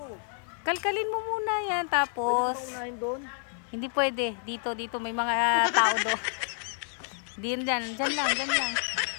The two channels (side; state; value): right; silent; 58 dB below the other